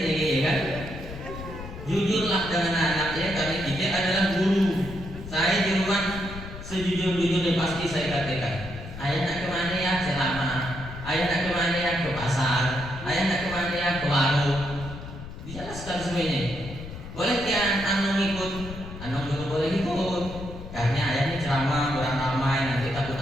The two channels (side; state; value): left; noise; rumble, 11 dB below the sound